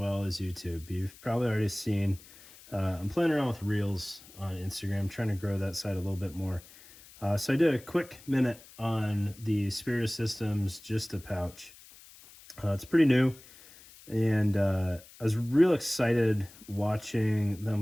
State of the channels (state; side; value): noise; left; hiss, 22 dB below the sound